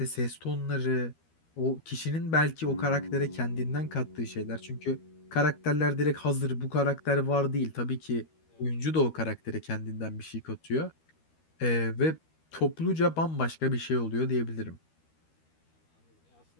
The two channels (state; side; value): late; right; 13 ms